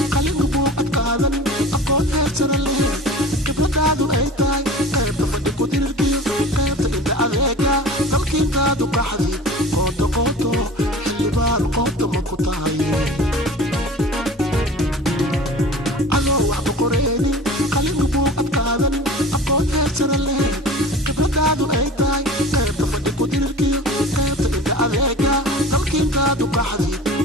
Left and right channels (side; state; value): both; normal; correlation 0.39